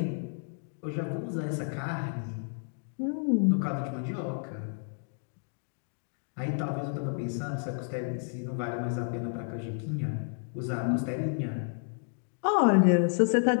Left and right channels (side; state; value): right; silent; 57 dB below the other